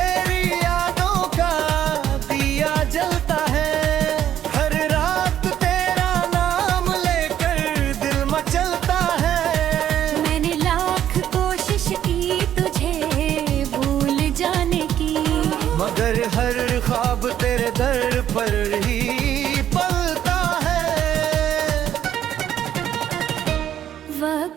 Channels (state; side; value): quieter; left; 10.7 dB